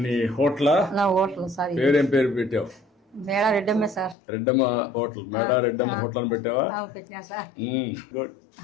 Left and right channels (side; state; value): right; drops out; at 4.2 s